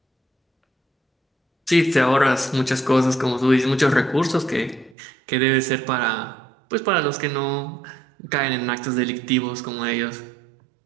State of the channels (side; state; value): left; drops out; at 5.0 s